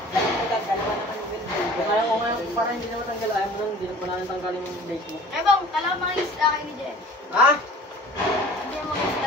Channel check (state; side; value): normal; both; correlation 0.45